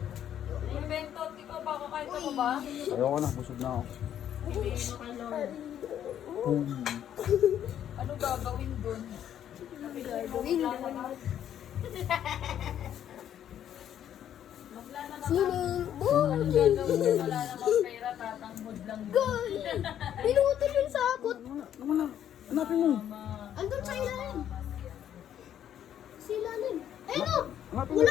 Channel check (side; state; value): right; quieter; 10.3 dB